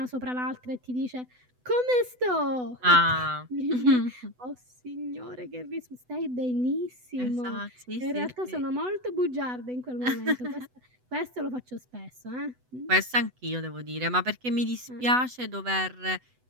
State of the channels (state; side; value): late; left; 8.0 ms